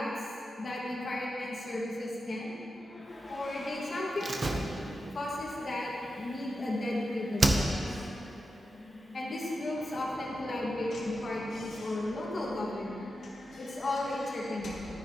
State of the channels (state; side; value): normal; both; correlation 0.89